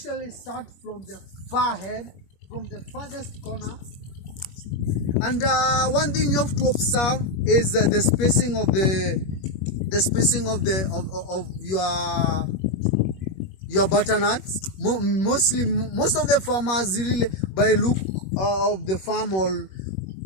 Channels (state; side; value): late; right; 21 ms